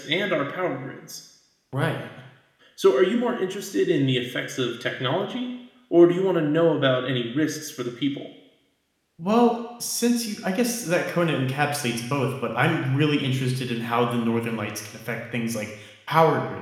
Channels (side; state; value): both; identical; correlation 1.00